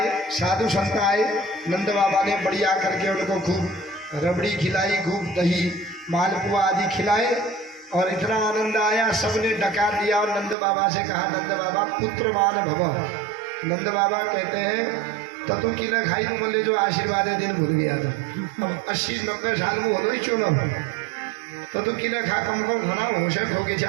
साधु संत आए, नंद बाबा ने बढ़िया करके उनको खूब रबड़ी खिलाई, खूब दही मालपुआ आदि खिलाए और इतना आनंद आया, सबने डका दिया और नंद बाबा से कहा नंद बाबा पुत्रमान भव। नंद बाबा कहते हैं ततु की न खाई तो बोले जो आशीर्वाद दिन भूल गया था, अब 80-90 साल में हो क्यों ना हो, ततु की न खा कम कम होना होश हो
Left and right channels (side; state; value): left; drops out; at 10.6 s